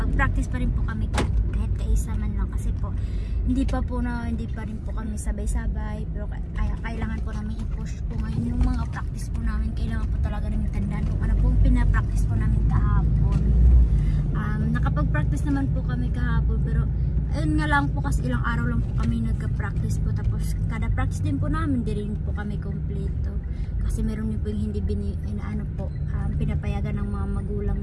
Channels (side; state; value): both; identical; correlation 1.00